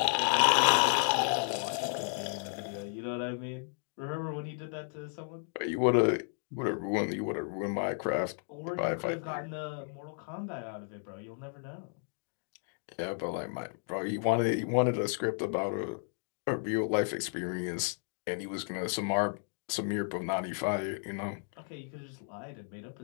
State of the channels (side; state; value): right; silent; 56 dB below the other